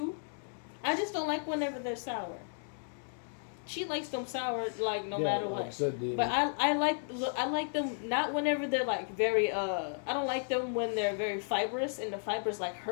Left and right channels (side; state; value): right; silent; digital silence